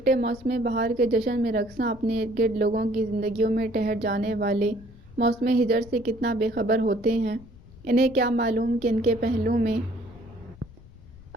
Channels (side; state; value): left; noise; rumble, 21 dB below the sound